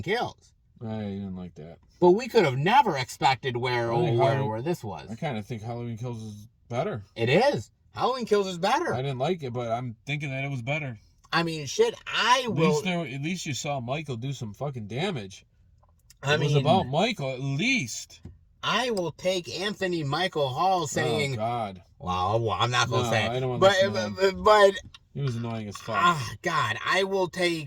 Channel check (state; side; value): identical; both; correlation 1.00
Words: Kills. I didn't like that. But we could have never expected where this was. I kind of think Halloween Kills is better. It is. Halloween Kills is better. I didn't like it, but I'm thinking that it was better. I mean, shit, at least you saw Michael do some fucking damage. It was about Michael, at least. I will take Anthony Michael Hall saying... Oh, God. Well, I'm not going to say it. I don't want to but it was annoying as fuck. God, I will